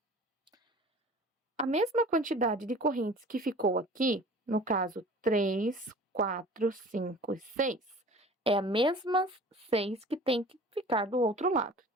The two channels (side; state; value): both; normal; correlation 0.44